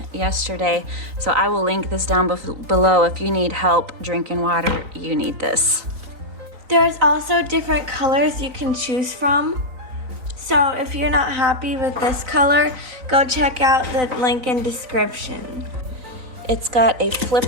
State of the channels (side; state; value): left; late; 3.9 ms